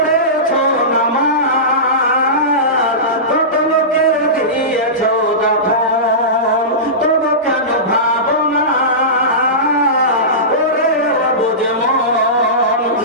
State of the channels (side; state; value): both; normal; correlation -0.19